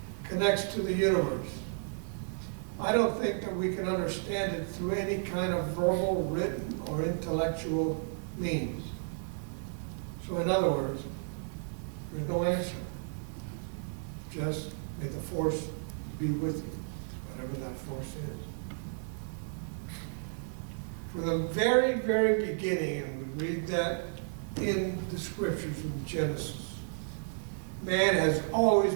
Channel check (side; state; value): left; silent; digital silence